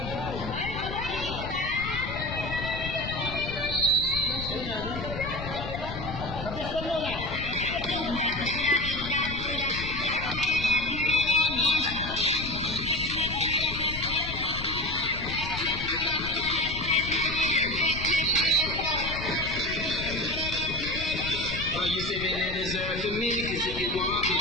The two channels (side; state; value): left; noise; rumble, 8 dB below the sound